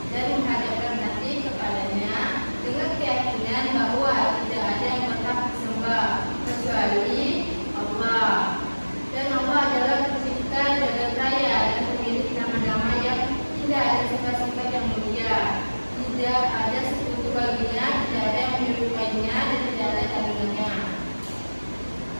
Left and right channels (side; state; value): both; inverted; correlation -1.00